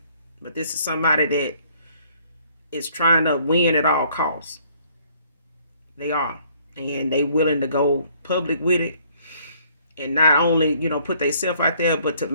But this is somebody that is trying to win at all costs. They are. And they willing to go public with it. And not only, put themselves out there, but to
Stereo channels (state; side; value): inverted; both; correlation -0.62